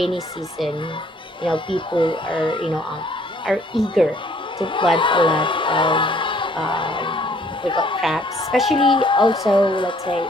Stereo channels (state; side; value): normal; both; correlation 0.61